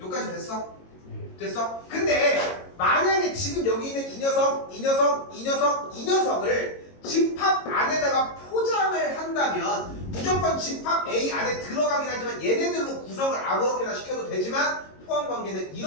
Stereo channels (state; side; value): late; right; 22 ms